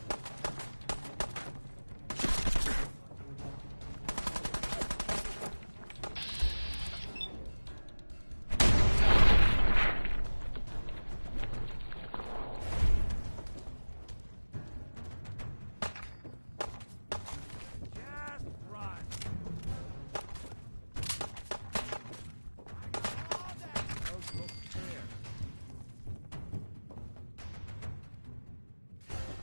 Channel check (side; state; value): both; inverted; correlation -1.00